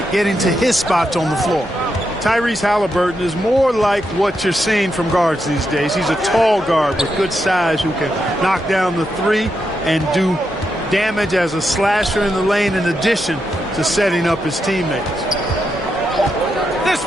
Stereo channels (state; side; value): normal; both; correlation 0.84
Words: getting to his spots on the floor. Tyrese Halliburton is more like what you're seeing from guards these days. He's a tall guard with good size who can knock down the 3 and do damage as a slasher in the lane in addition to setting up his teammates. This